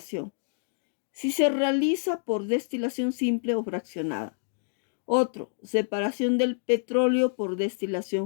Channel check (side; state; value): right; silent; digital silence